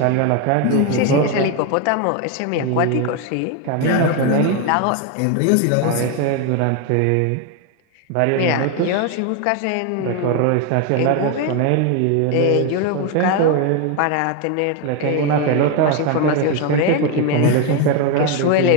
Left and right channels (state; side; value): different; both; correlation 0.02